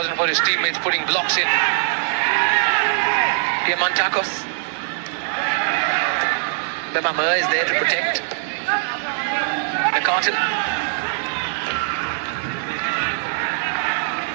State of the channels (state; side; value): silent; left; digital silence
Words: for his teammates putting blocks in. Diamantakos. Bemama is there to protect. McCartan.